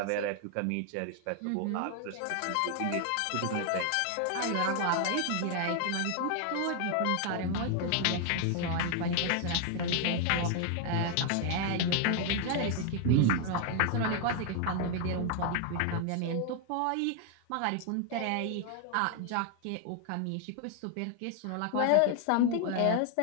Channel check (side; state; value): both; different; correlation 0.00